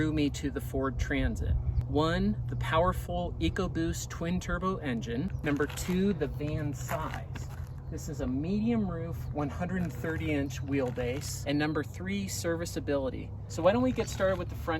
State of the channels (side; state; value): both; identical; correlation 1.00